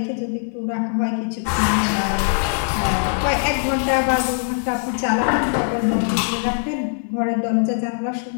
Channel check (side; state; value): right; silent; 63 dB below the other